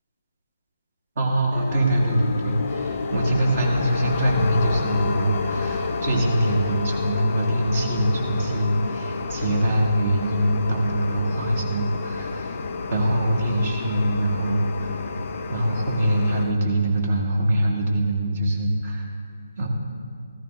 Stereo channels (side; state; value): both; inverted; correlation -0.83